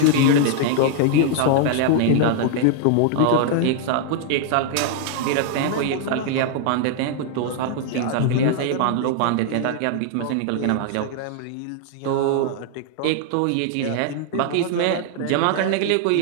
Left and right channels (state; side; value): different; both; correlation 0.00